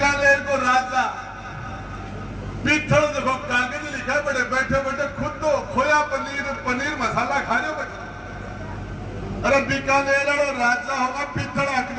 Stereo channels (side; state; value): both; identical; correlation 1.00